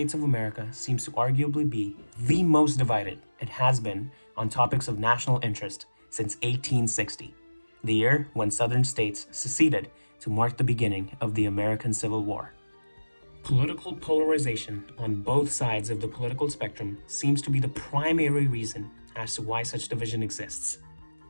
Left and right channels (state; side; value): inverted; both; correlation -1.00